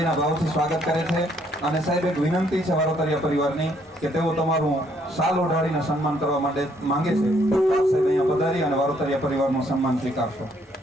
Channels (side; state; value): both; normal; correlation 0.68